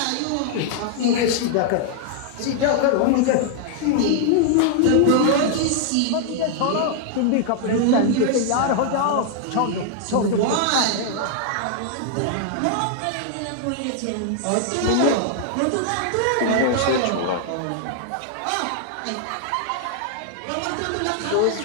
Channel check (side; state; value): both; different; correlation 0.00